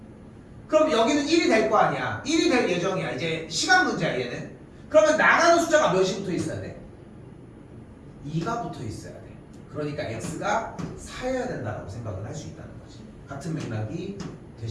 그럼 여기는 1이 될 거 아니야. 1이 될 예정이야. 이제 시간 문제야 얘는. 그러면 나가는 숫자가 몇이 붙어 있어야 돼? 2가 붙어 있어야 돼. 그러니까 x가 4여야 된다고 생각을 할 수 있다는 거지. 같은 맥락이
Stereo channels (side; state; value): both; identical; correlation 1.00